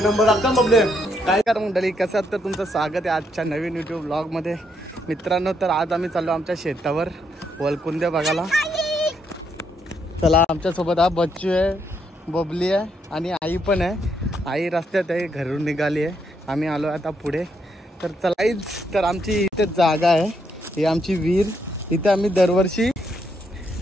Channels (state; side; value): normal; both; correlation 0.76